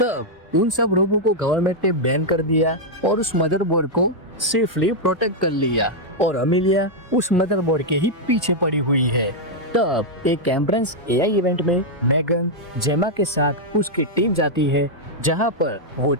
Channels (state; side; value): normal; both; correlation -0.03